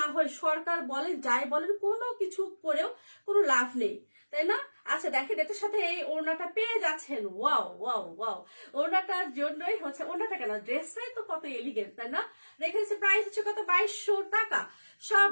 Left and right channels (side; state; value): both; inverted; correlation -1.00